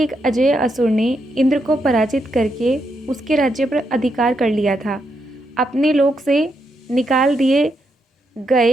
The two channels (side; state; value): both; normal; correlation 0.80